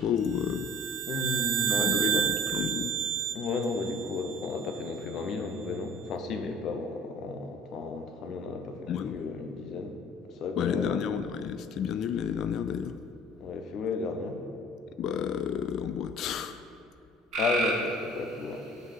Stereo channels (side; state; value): both; normal; correlation 0.49